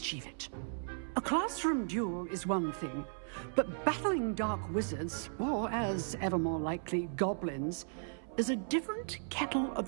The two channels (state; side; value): silent; left; 54 dB below the other